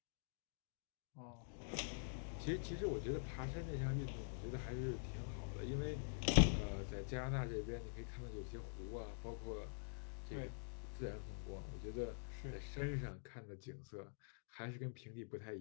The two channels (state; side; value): silent; right; digital silence